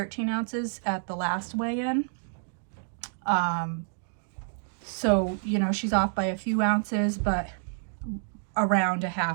ounces at the last weigh-in. So, you know, she's off by a few ounces, but around a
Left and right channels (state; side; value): silent; left; digital silence